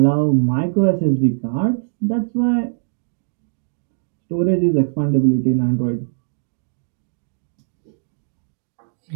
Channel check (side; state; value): left; silent; digital silence